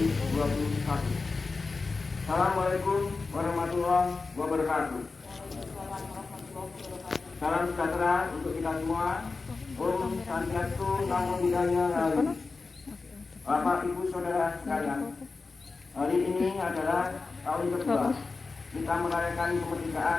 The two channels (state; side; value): quieter; right; 4.1 dB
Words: Assalamualaikum warahmatullahi wabarakatuh. Salam sejahtera untuk kita semua. Om Santiastu Namo Buddhaya Rahayu. Bapak Ibu Saudara sekalian, hari ini adalah tahun kedua kita merayakan